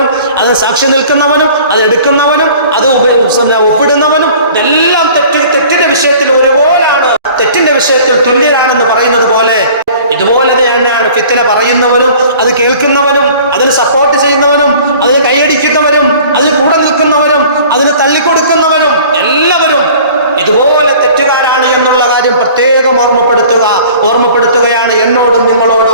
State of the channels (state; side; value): inverted; both; correlation -0.48